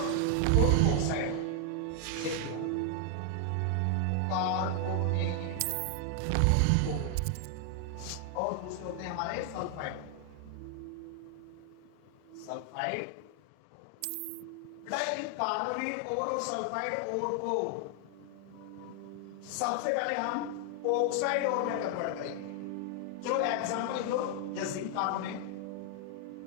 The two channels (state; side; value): different; both; correlation 0.00